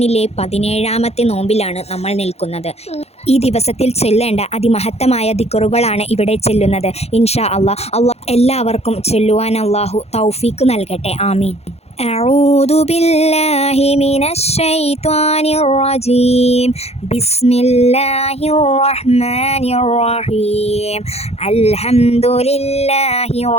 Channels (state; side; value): late; right; 0.30 ms